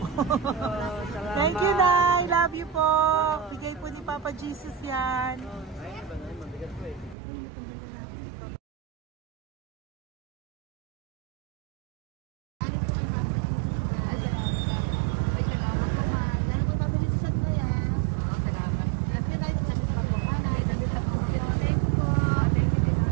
Salamat. Thank you, Nay. Love you po. Bigay po ni Papa Jesus yan. Mabigat po eh.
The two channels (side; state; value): left; drops out; at 7.2 s